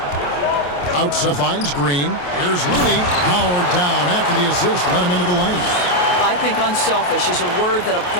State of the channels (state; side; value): late; right; 28 ms